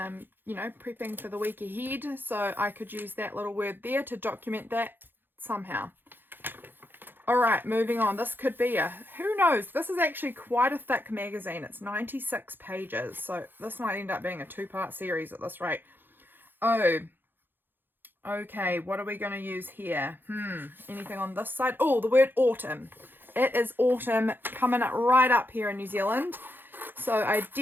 you know, prepping for the week ahead. So I could use that little word there to document that somehow. All right, moving on. This could be who knows? This is actually quite a thick magazine. It's 96 pages. So this might end up being a 2-part series at this rate. Oh, okay. What are we going to use here? Anything on this side? Oh, the word autumn. It is autumn coming right up here in New Zealand. So I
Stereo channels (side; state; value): left; late; 0.096 ms